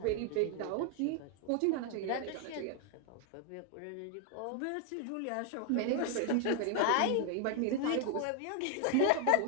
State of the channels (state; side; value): different; both; correlation 0.00